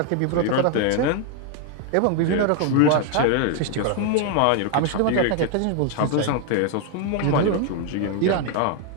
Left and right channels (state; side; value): different; both; correlation 0.00